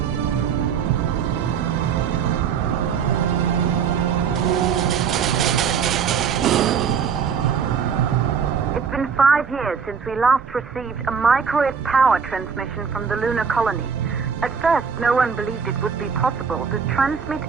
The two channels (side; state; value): left; quieter; 6.5 dB